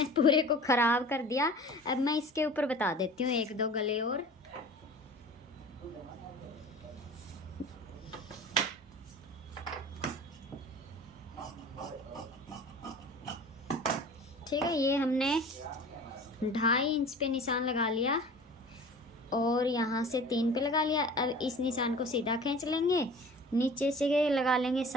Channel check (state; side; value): normal; both; correlation 0.42